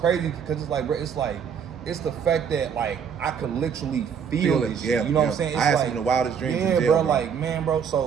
because it's like, bro, it's the fact that like I could literally feel it. Yeah, you know what I'm saying? It's I had like, some of the wildest dreams. Yeah, in jail, bro, like man, bro.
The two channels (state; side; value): quieter; left; 7.2 dB